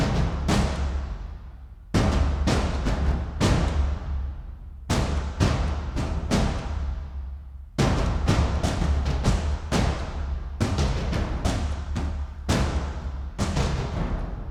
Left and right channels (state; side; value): identical; both; correlation 1.00